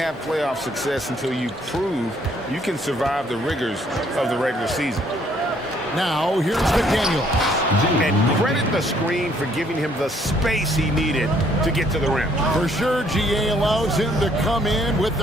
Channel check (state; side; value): normal; both; correlation 0.65